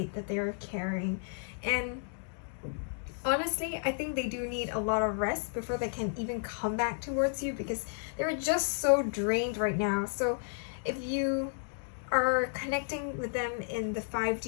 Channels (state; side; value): silent; right; 56 dB below the other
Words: that they are carrying. And honestly, I think they do need a lot of rest before they can even come back towards you, because they're just so drained right now. So if you are connecting with them in the